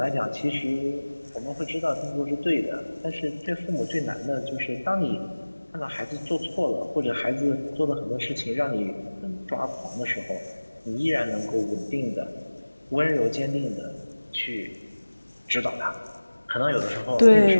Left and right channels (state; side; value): inverted; both; correlation -1.00